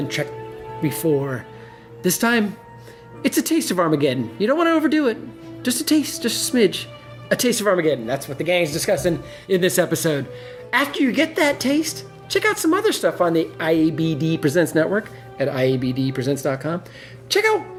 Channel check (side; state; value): both; identical; correlation 1.00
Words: Checked Before. This time, it's a taste of Armageddon. You don't want to overdo it. Just a taste, just a smidge. A taste of Armageddon. That's what the gang's discussing in this episode. After you get that taste, check out some other stuff on the IABD Presents network at IABDpresents.com. Check out